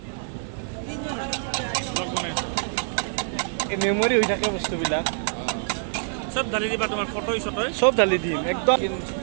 মেমৰি হৈ থাকে বস্তুবিলাক সব ঢালি দিবা তোমাৰ ফটো চটো চব ঢালি দিম একদম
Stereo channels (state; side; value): silent; left; 61 dB below the other